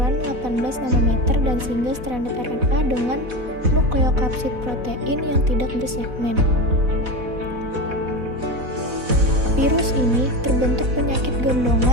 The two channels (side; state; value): left; late; 4.1 ms